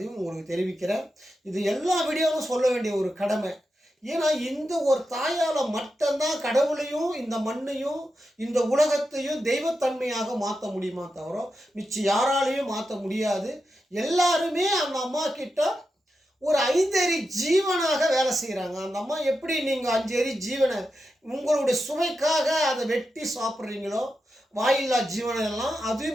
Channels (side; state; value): both; normal; correlation 0.88